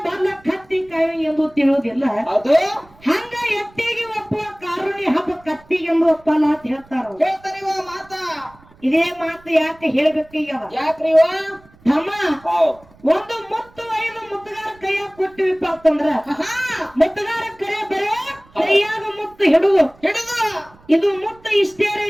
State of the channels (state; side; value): noise; right; rumble, 27 dB below the sound